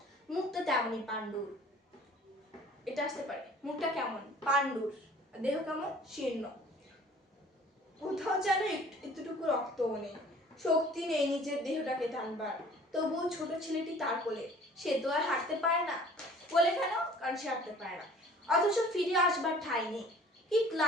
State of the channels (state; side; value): normal; both; correlation 0.50